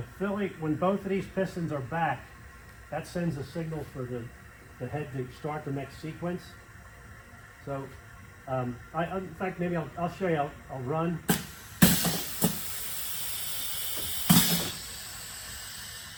both of these pistons are back, that sends a signal for the head to start the next sequence. So, in fact, maybe I'll show you. I'll run.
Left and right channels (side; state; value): both; identical; correlation 1.00